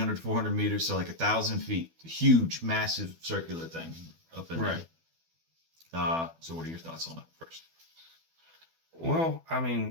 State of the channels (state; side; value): late; left; 12 ms